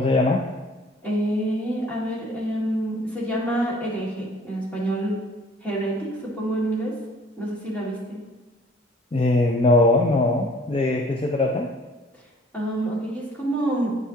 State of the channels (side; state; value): both; normal; correlation 0.54